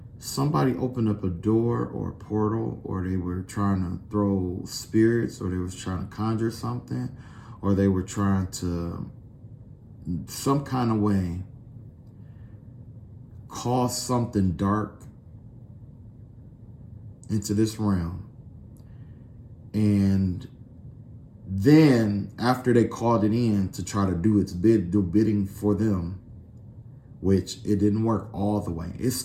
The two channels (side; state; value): both; identical; correlation 1.00